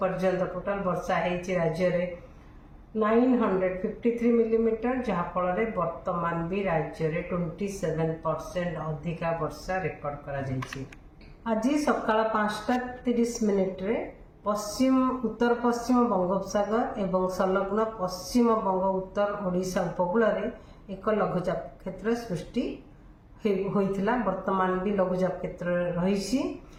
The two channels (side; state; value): both; identical; correlation 1.00